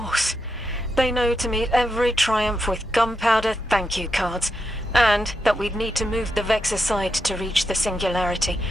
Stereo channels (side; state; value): both; normal; correlation 0.85